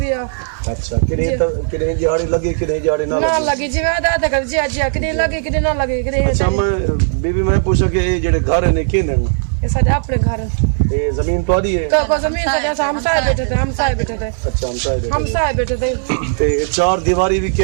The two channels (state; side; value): silent; left; 69 dB below the other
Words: ہے۔ اچھا کنے جہاڑی لگی کنے جہاڑی نہ لگی جی میں آدھا کر جی جی کنے لگی کنے نہ لگی کنے اچھا میں بی میں پوچھا کہ یہ جڑے گھر ہیں کینے یہ سارے اپنے گھر یہ زمین تہاڈی ہے؟ کو زمین سے جیسا ہم سائے بیٹھے تھے اچھا ہم سائے بیٹھے تھے تے 4 دیواری بھی